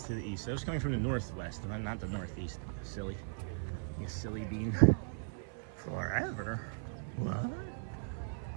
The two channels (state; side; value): silent; left; 53 dB below the other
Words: to the east. It was coming from the northwest, not the northeast. Silly. You silly bean. Forever. What?